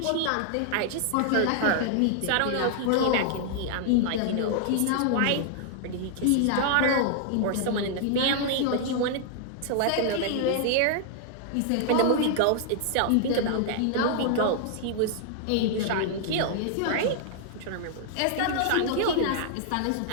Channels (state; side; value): different; both; correlation -0.01